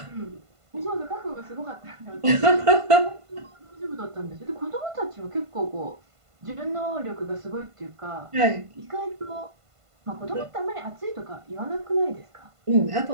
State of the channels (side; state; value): left; late; 1.5 ms